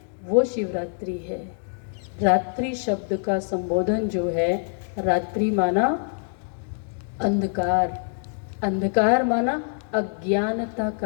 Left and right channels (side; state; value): right; silent; 59 dB below the other